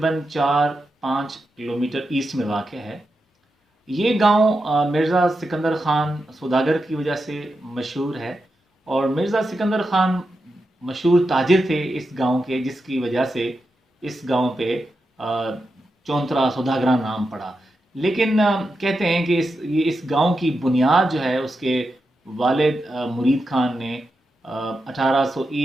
4-5 किलोमीटर ईस्ट में वाक़ है। ये गांव मिर्ज़ा सिकंदर ख़ान सौदागर की वजह से मशहूर है और मिर्ज़ा सिकंदर ख़ान मशहूर ताजिर थे इस गांव के, जिसकी वजह से इस गांव पे चौंतरा सौदागरा नाम पड़ा। लेकिन कहते हैं कि इस गांव की बुनियाद जो है उसके वालिद मुरीद खान ने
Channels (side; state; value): both; normal; correlation 0.88